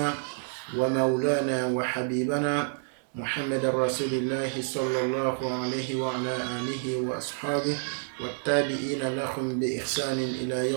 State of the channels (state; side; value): silent; left; digital silence